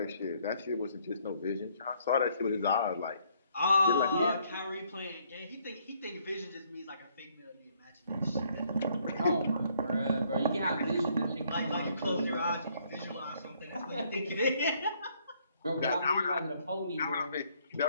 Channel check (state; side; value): inverted; both; correlation -0.67